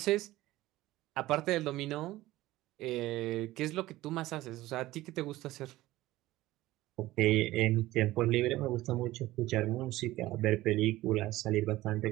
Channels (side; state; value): left; quieter; 17.0 dB